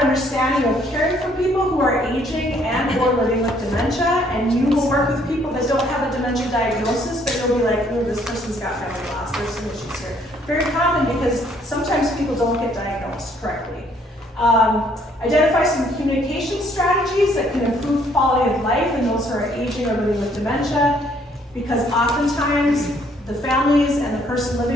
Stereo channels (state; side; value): normal; both; correlation 0.65